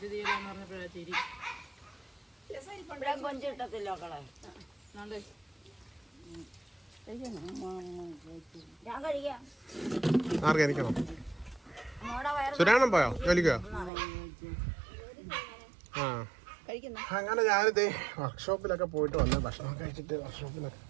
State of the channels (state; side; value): drops out; left; at 13.9 s